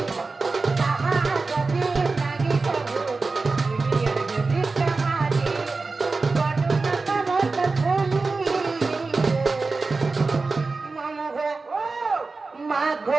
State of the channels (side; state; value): left; quieter; 3.9 dB